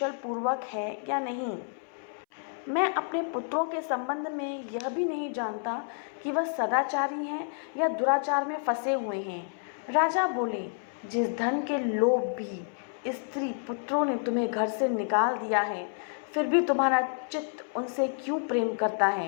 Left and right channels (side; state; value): right; silent; 58 dB below the other